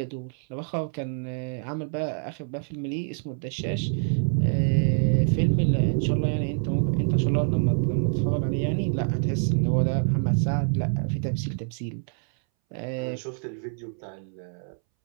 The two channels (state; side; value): silent; left; 61 dB below the other